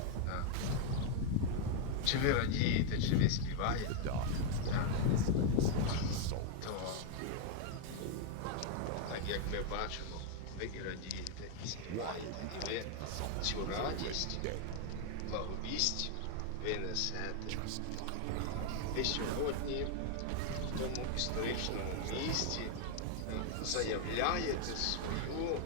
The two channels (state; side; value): different; both; correlation 0.00